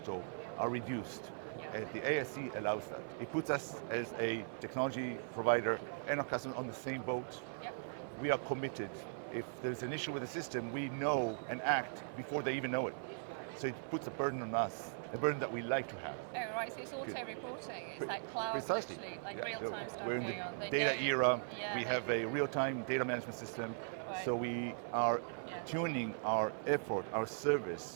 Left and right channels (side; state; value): left; silent; 51 dB below the other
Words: are reduced. And the ASC allows that. It puts us as a technology provider and our customers on the same boat. We are committed. If there's an issue with the system, we know and act before they even know it. So it puts a burden on us, a burden that we like to have. Oh, right, so it's auto-reporting. It's like cloud, literally, like real-time stuff going on. We're in the data era. We have a real-time data management system. So we are tuning our effort, our